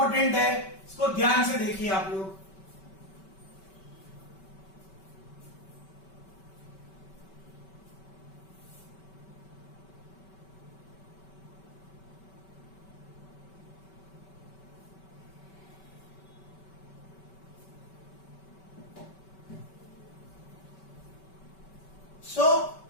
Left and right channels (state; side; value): late; right; 5.2 ms